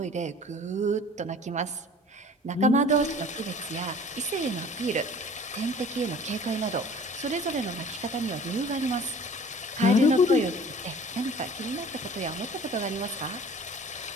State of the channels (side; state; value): both; normal; correlation 0.47